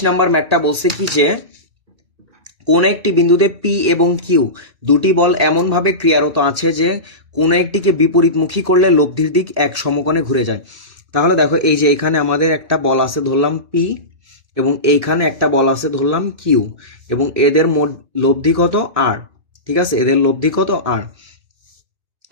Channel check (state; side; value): late; left; 1.8 ms